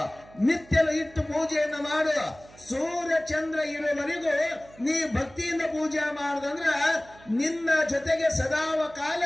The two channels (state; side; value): noise; right; hum, 23 dB below the sound